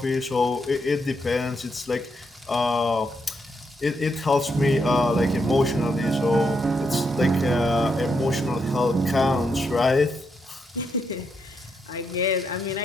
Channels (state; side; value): normal; both; correlation 0.80